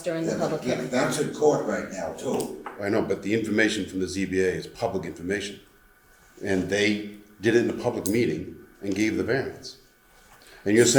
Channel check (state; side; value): identical; both; correlation 1.00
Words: during the Yeah, public but hearing. that's in court right now too. I know, but the information from the ZBA is public information. And they did it in a public meeting and gave the variance. And you're